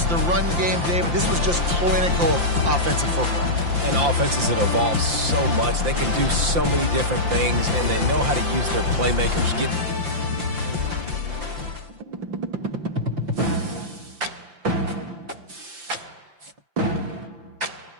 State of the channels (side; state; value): left; late; 5.8 ms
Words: the run game, David. This was just clinical offensive football. And offenses that evolve so much. They can do so many different things, and they know how to use their playmakers.